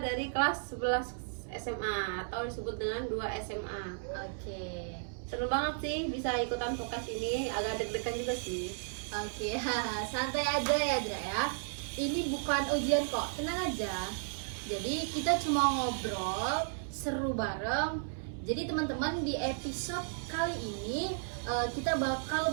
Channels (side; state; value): left; silent; 55 dB below the other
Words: dari kelas 11 SMA atau disebut dengan 2 SMA. Oke. Seru banget sih bisa ikutan podcast ini, agak deg-degan juga sih. Oke, santai aja ya Azra ya. Ini bukan ujian kok, tenang aja. Jadi kita cuma ngobrol, seru bareng. Jadi teman-teman, di episode kali ini kita bakal